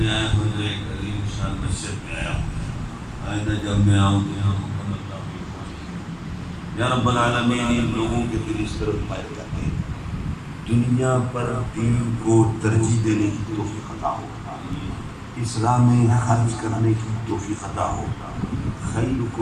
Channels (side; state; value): both; identical; correlation 1.00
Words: آیا ہوں تو ایک عظیم شان مسجد میں آیا ہوں۔ آئندہ جب میں آؤں تو یہاں مکمل تعمیر ہو۔ یا رب العالمین، ان لوگوں کے دل اس طرف مائل کرتے ہیں، دنیا پر دین کو ترجیح دینے کی توفیق عطا ہو، اسلام میں خرچ کرنے کی توفیق عطا ہو۔